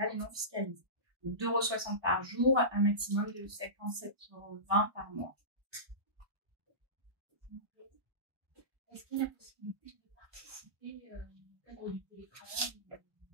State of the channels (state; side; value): late; left; 1.2 ms